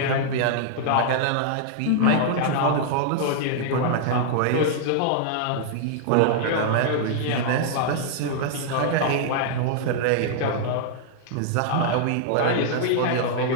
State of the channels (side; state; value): both; different; correlation -0.01